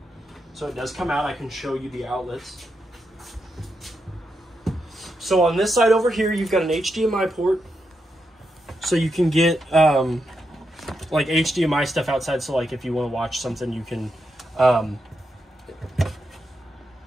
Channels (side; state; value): both; normal; correlation 0.84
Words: so it does come out. I can show you the outlets. So on this side over here, you've got an HDMI port, so you can get like HDMI stuff outside. So like if you want to watch something, you can